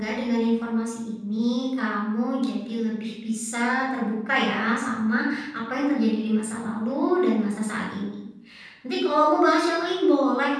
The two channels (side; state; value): both; identical; correlation 1.00